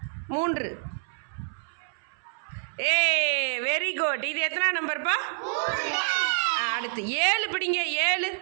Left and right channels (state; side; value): silent; left; 60 dB below the other